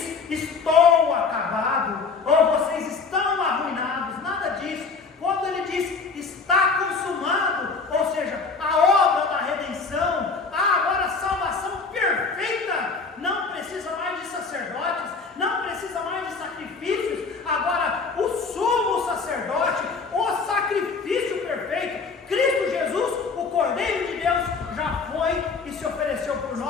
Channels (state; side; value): quieter; right; 4.7 dB